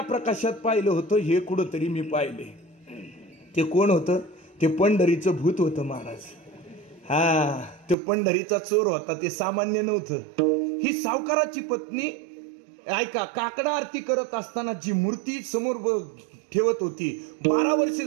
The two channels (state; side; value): drops out; left; at 8.0 s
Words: प्रकाशात पाहिलं होतं, हे कुठंतरी मी पाहिले. ते कोण होतं? ते पंढरीचं भूत होतं महाराज. हा, तो पंढरीचा चोर होता, ते सामान्य नव्हतं. ही सावकाराची पत्नी, ऐका, काकडा आरती करत असताना जी मूर्ती समोर ठेवत होती, 12 वर्ष